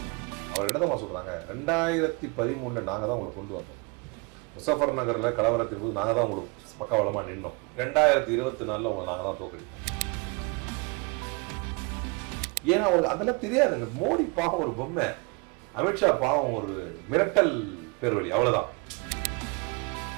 அவர் என்னதான் சொல்றாங்க, 2013 நாங்கள் தான் உங்களை கொண்டு வந்தோம். முசஃபர் நகரில் கலவரத்தின் போது நாங்கள் தான் உங்களுக்கு பக்கவலமாக நின்னோம். 2024 உங்களை நாங்கள் தான் தோக்கடிப்போம். ஏன்னா அவருக்கு அதெல்லாம் தெரியாதுங்க. மோடி பாவம் ஒரு பொம்மை, அமித்ஷா பாவம் ஒரு மிரட்டல் பேர்வழி, அவ்வளவுதான்.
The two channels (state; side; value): quieter; left; 30.3 dB